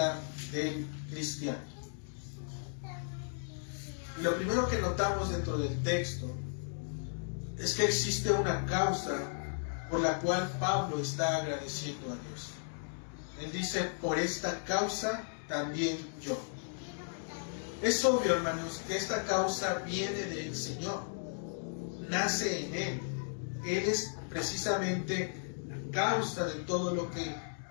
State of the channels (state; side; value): silent; right; digital silence